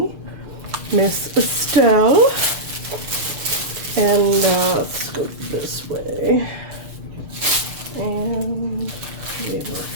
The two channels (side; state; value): left; late; 6.6 ms